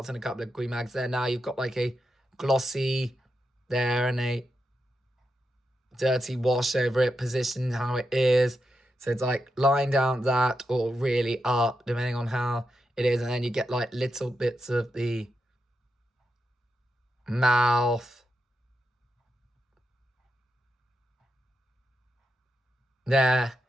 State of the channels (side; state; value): both; normal; correlation 0.86